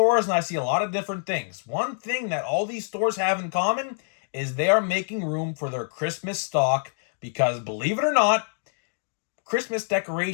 and I see a lot of different things. One thing that all these stores have in common is they are making room for their Christmas stock because, believe it or not, Christmas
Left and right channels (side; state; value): right; silent; digital silence